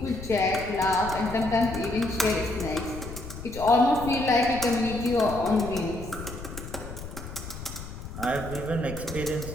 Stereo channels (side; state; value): left; noise; rumble, 11 dB below the sound